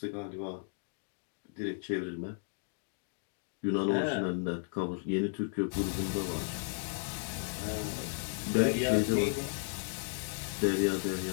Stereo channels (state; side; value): silent; right; 55 dB below the other